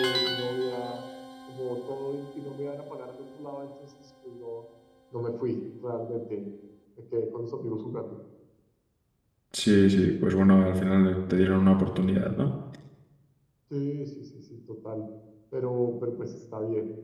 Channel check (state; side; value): identical; both; correlation 1.00